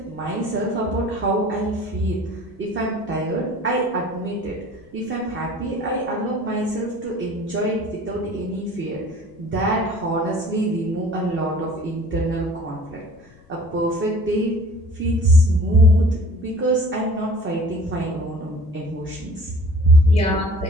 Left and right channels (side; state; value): left; noise; rumble, 27 dB below the sound